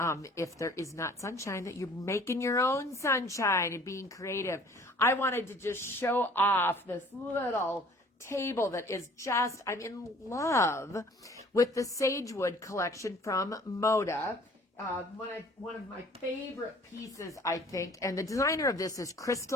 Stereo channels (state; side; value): normal; both; correlation 0.53